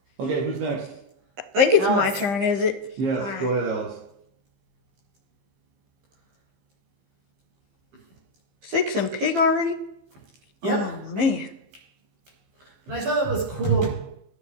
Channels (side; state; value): left; late; 15 ms